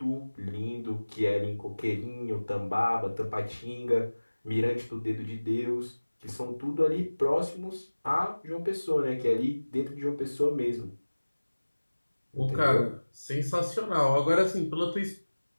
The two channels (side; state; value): both; inverted; correlation -1.00